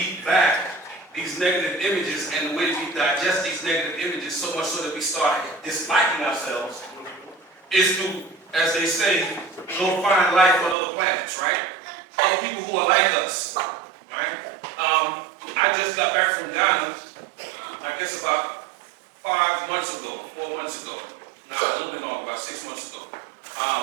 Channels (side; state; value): left; drops out; at 10.8 s